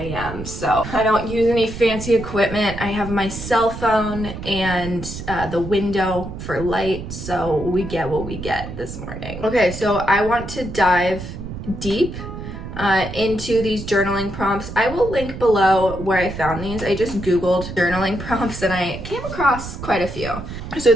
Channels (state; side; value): noise; right; rumble, 9 dB below the sound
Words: so I don't use any fancy equipment. I have my cell phone and the window for light, so we get what we get this morning. Okay, so I want to dive deep into these journaling prompts. I will link below where I found these. I just Googled journaling prompts and I came across quite a few. So